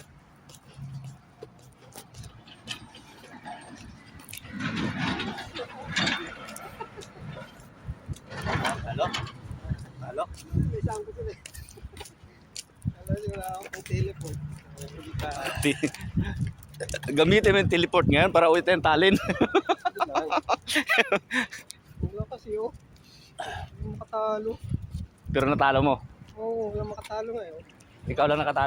Halo? Halo? May isang ko sila. Alam niyo, wala akong telepon. Gamitin mo yung teleport ngayon para uwi tayong talin. Wala kasi oh. Hindi makatalo. Pero natalo mo. Oo, wala makatalo nga eh. Ikaw lang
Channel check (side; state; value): both; identical; correlation 1.00